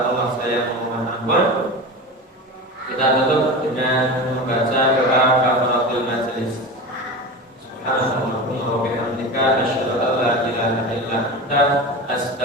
Allah saya mohon ampun. Kita tutup dengan membaca doa kafaratul majelis. Subhanallahumma wa bihamdika asyhadu an la ilaha illa anta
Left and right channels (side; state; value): both; normal; correlation 0.28